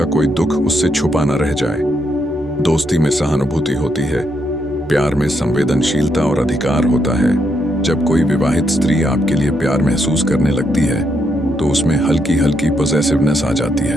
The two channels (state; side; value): normal; both; correlation 0.78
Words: कोई दुख उससे छुपा न रह जाए। दोस्ती में सहानुभूति होती है, प्यार में संवेदनशीलता और अधिकार होता है। जब कोई विवाहित स्त्री आपके लिए प्यार महसूस करने लगती है तो उसमें हल्की हल्की पॉसेसिवनेस आ जाती